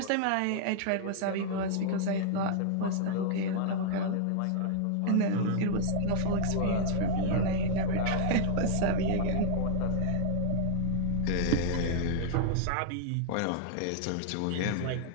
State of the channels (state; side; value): different; both; correlation -0.01